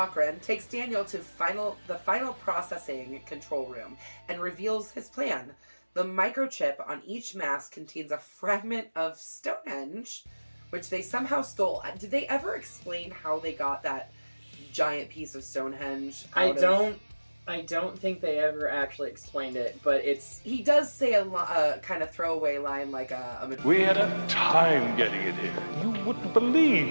takes Daniel to the final processing control room and reveals his plan. The microchip on each mask contains a fragment of Stonehenge, which they somehow stole. Did they ever explain how they got that giant piece of Stonehenge? I don't think they ever actually explained it, but he does say a kind of throwaway line like we had a time getting it here. You wouldn't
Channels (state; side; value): inverted; both; correlation -1.00